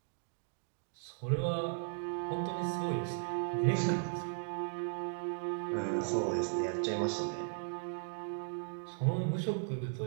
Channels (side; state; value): left; silent; digital silence